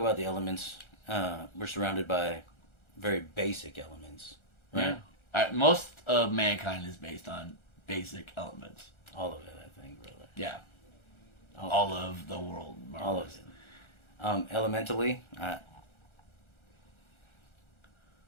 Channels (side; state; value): right; late; 1.4 ms